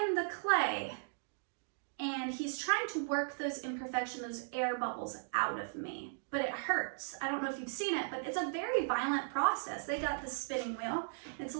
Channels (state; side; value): silent; left; digital silence